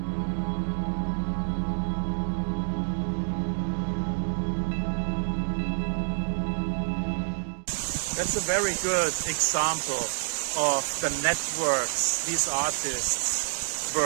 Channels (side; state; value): left; silent; digital silence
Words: That's a very good example of the networks these artists